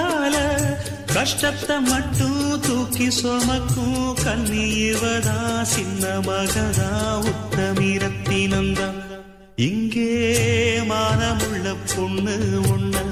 கஷ்டத்தை மட்டும் தூக்கி சுமக்கும் கண்ணீவதா சின்ன மகதா உத்தமிரத்தினந்தா இங்கே மானமுள்ள பொண்ணு ஒண்ண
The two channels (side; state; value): both; identical; correlation 1.00